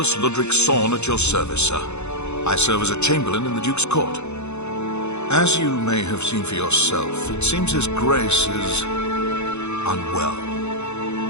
Ludric Sorn at your service, sir. I serve as a Chamberlain in the Duke's court. As you may have seen for yourself, it seems His Grace is unwell.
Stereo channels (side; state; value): right; late; 0.81 ms